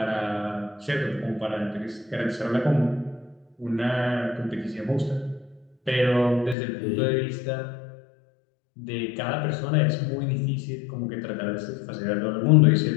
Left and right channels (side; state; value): right; drops out; at 6.6 s